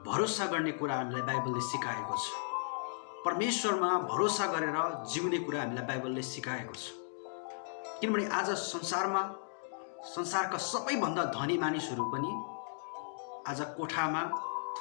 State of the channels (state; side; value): silent; right; digital silence